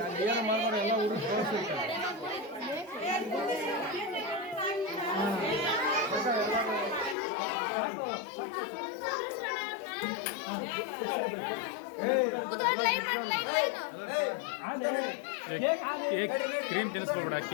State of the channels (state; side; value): drops out; right; at 7.2 s